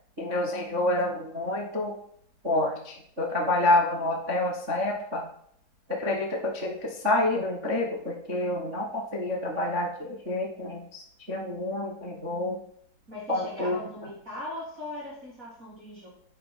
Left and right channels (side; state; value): left; late; 3.6 ms